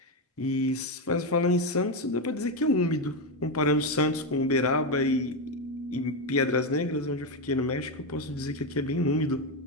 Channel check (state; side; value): normal; both; correlation 0.09